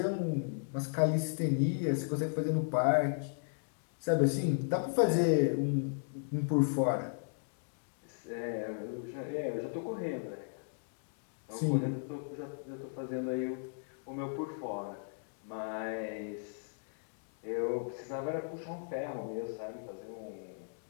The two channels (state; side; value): silent; right; digital silence